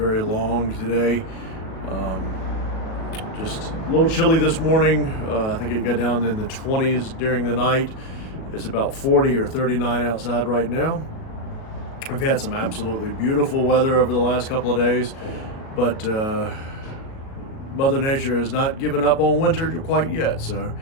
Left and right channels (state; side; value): late; right; 37 ms